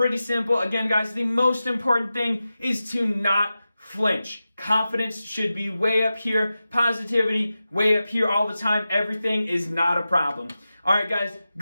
simple. Again, guys, the most important thing is to not flinch. Confidence should be way up here. Positivity, way up here all the time. Everything is not a problem. All right, guys,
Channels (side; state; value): both; inverted; correlation -0.93